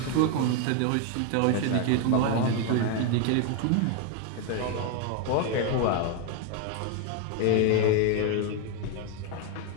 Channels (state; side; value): different; both; correlation 0.01